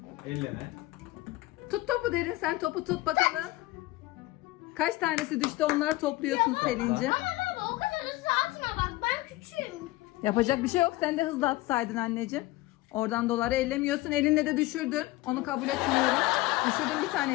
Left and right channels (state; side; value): quieter; right; 18.5 dB